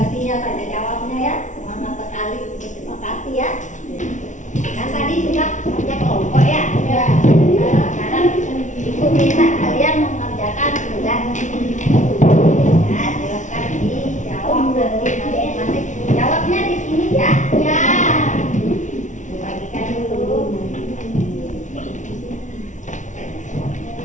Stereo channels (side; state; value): right; late; 0.36 ms